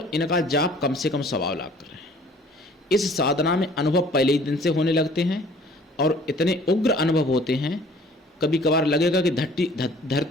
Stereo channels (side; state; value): both; normal; correlation 0.53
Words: इनका जाप कम से कम 1.25 लाख करें। इस साधना में अनुभव पहले ही दिन से होने लगते हैं, और इतने उग्र अनुभव होते हैं, कभी कभार लगेगा कि